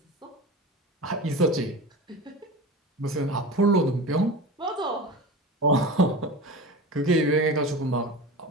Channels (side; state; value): both; normal; correlation 0.30